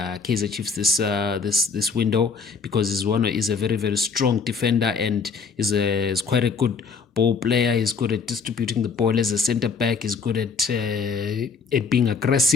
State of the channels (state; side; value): quieter; right; 5.2 dB